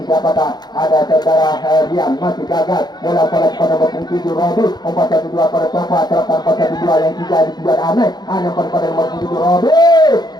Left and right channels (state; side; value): late; right; 0.20 ms